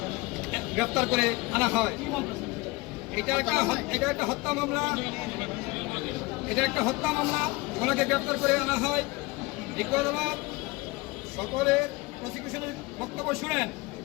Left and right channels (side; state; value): right; quieter; 23.1 dB